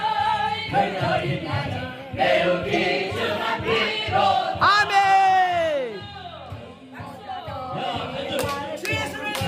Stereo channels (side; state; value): both; identical; correlation 1.00